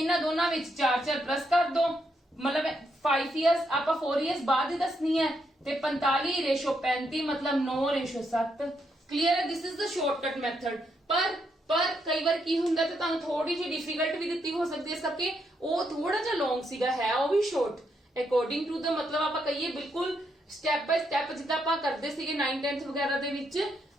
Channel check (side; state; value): both; normal; correlation 0.78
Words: ਦੋਨਾਂ ਵਿੱਚ 4 प्लस कर दो, मतलब 5 इयर्स ਆਪਾਂ 4 इयर्स बाद ही दसनी है, ਤੇ 45 रेशो 35 मतलब 9:7। क्लियर है, this is the shortcut method. पर कई बार की ਹੁੰਦਾ ਤੇ ਤੁਹਾਨੂੰ ਥੋੜੀ ਜਿਹੀ ਡਿਫਿਕਲਟ ਵੀ ਦਿੱਤੀ ਹੋ ਸਕਦੀ ਹੈ, ਸਕੇ ਉਹ ਥੋੜਾ ਜਿਹਾ ਲੌਂਗ ਸੀਗਾ, ਹੈ ਉਹ ਵੀ ਸ਼ਾਰਟ ਅਕੋਰਡਿੰਗ ਟੂ ਦਾ, मतलब ਆਪਾਂ ਕਹੀਏ ਬਿਲਕੁਲ ਸਟੈਪ ਬਾਈ ਸਟੈਪ ਜਿੱਦਾਂ ਆਪਾਂ ਕਰਦੇ ਸੀਗੇ 9th 10th ਵਗੈਰਾ ਦੇ ਵਿੱਚ